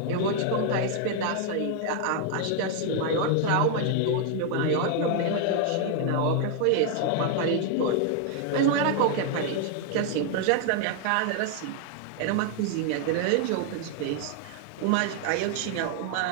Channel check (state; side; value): different; both; correlation 0.00